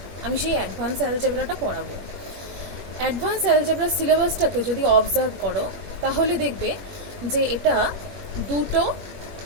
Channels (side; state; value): left; late; 21 ms